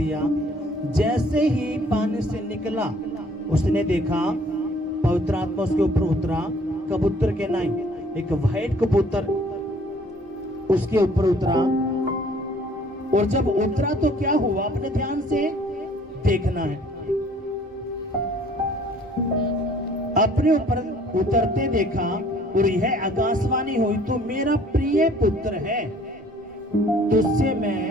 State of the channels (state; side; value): normal; both; correlation 0.57